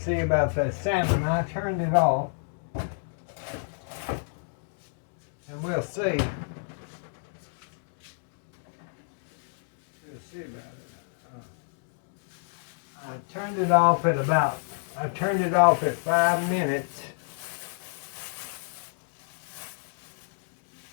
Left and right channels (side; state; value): right; silent; digital silence